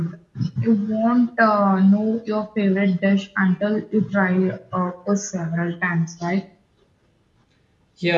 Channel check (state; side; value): identical; both; correlation 1.00